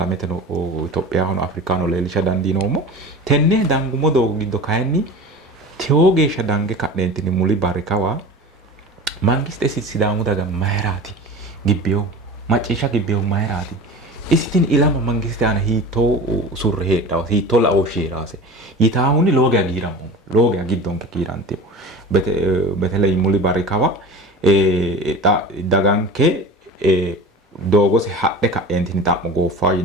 no Itophiyaho no Afrikaano leelisha dandiinoomo tenne dangumo doogo giddo kayinni tewo geeshsha dange ka'neentinni muli barrikawa mangiste sidaamu daga mayraati gibbeyo macciishsha gibbeyo mayraati isitin ilama mangiste ana hiitoo surre heedhaw hiitoo la'oo sheeraase yitaahuni looge agiiramu looge agiddonke kiirantiyo betele muli barrikawa daganke doogose hadhe ka'eentini xa'mo gooffaa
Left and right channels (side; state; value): both; normal; correlation 0.35